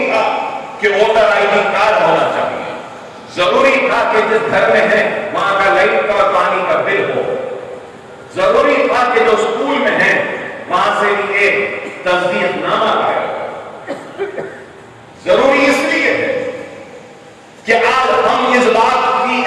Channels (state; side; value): identical; both; correlation 1.00